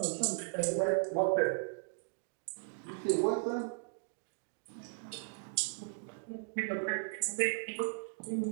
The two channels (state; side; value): silent; left; digital silence